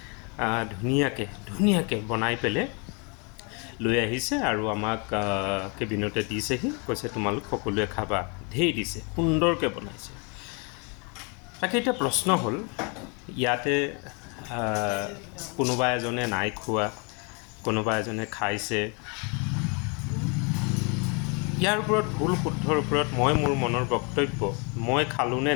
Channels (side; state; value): right; quieter; 33.4 dB